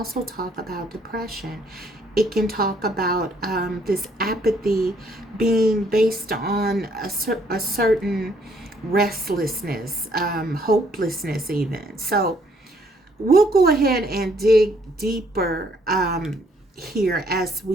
talk about depression. It can talk about this apathy being based on a certain restlessness, hopelessness even. So we'll go ahead and dig deeper here as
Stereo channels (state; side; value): normal; both; correlation 0.66